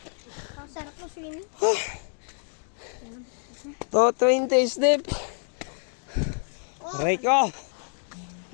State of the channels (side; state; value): right; silent; 55 dB below the other